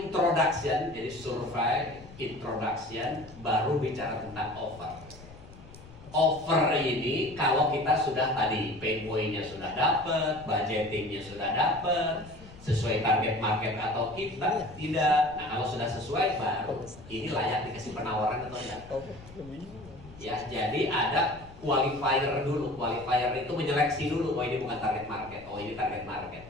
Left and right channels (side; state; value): left; noise; rumble, 19 dB below the sound